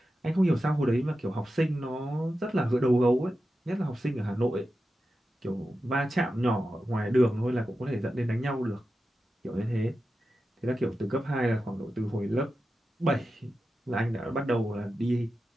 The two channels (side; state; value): both; normal; correlation 0.91